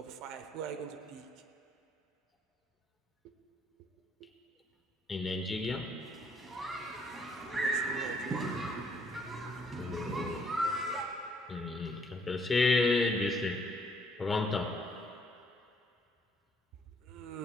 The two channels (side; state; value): both; normal; correlation 0.67